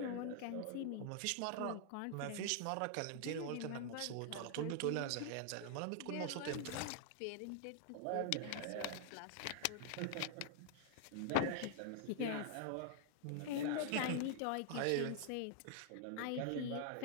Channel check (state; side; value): different; both; correlation 0.00